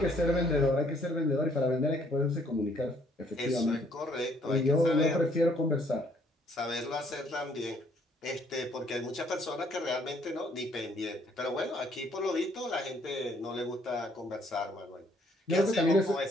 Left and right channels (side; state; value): both; normal; correlation 0.65